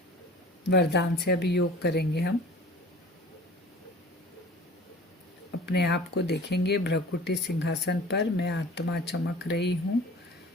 वरदान से अभी योग करेंगे हम। अपने आप को देखेंगे भ्रकुटी सिंहासन पर, मैं आत्मा चमक रही हूँ।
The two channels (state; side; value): normal; both; correlation 0.44